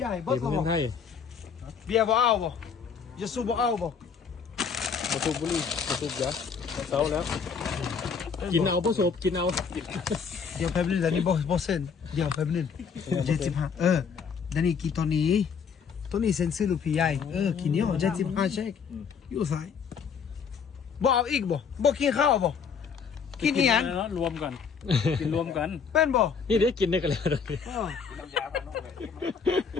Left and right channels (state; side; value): quieter; right; 6.3 dB